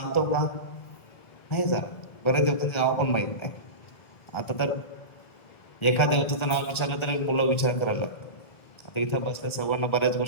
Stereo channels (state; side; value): late; right; 1.3 ms